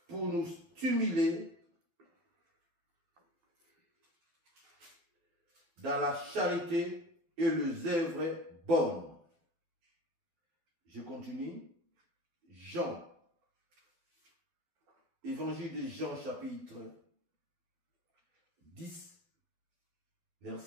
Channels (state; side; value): late; left; 12 ms